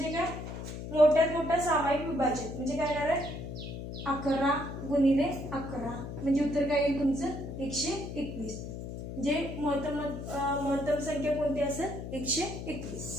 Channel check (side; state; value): left; noise; hum, 8 dB below the sound